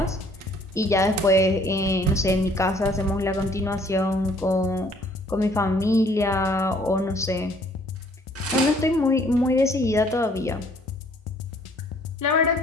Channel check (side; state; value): both; normal; correlation 0.60